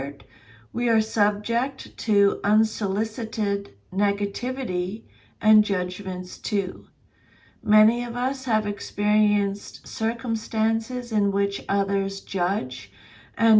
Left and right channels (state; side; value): identical; both; correlation 1.00